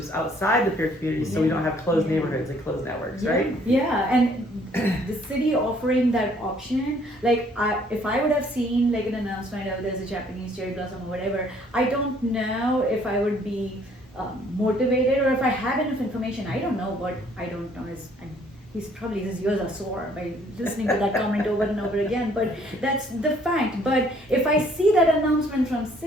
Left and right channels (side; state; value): both; normal; correlation 0.62